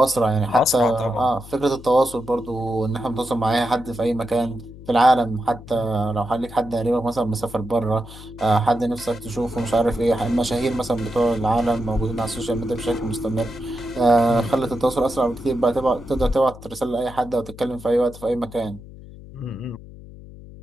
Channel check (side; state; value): left; noise; hum, 17 dB below the sound